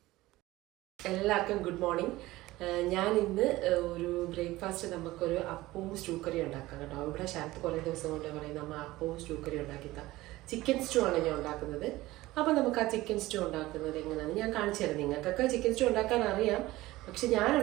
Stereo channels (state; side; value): quieter; left; 18.1 dB